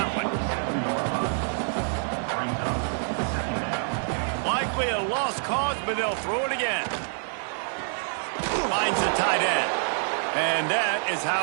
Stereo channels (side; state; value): left; silent; 60 dB below the other